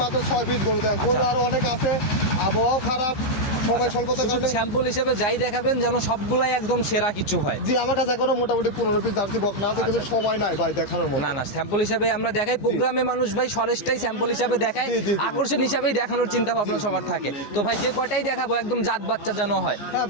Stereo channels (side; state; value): right; late; 15 ms